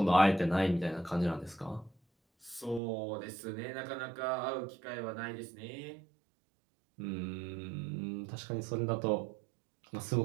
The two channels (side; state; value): left; drops out; at 2.8 s